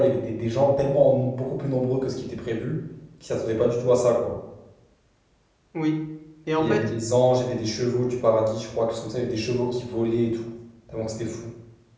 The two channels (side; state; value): both; identical; correlation 1.00